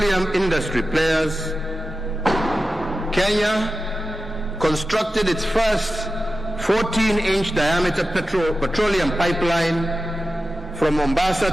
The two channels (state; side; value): normal; both; correlation 0.93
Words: industry players, Kenya constructed its first 14-inch diameter petroleum pipeline from